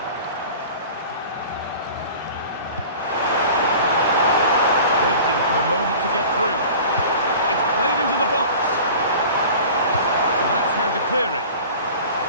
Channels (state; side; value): inverted; both; correlation -0.41